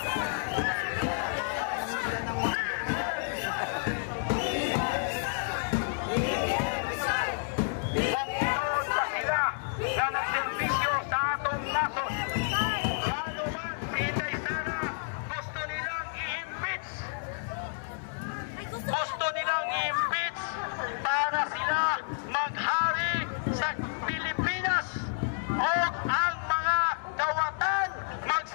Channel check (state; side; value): silent; right; digital silence